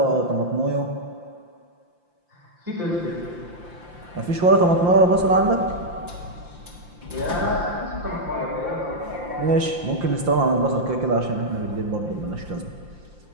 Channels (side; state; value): left; late; 5.8 ms